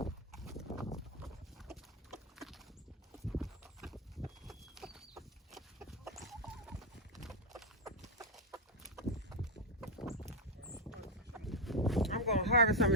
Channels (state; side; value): normal; both; correlation 0.04